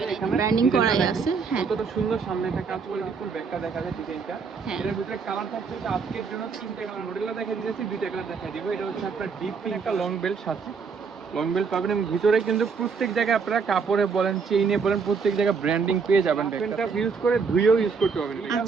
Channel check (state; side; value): quieter; left; 5.4 dB